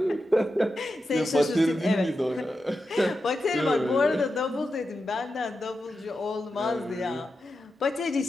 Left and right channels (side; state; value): both; normal; correlation 0.89